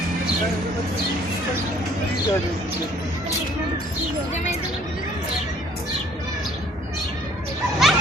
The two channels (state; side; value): normal; both; correlation 0.58